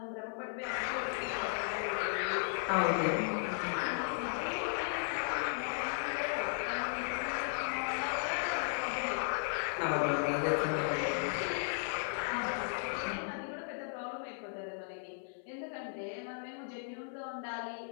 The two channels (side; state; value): right; silent; 54 dB below the other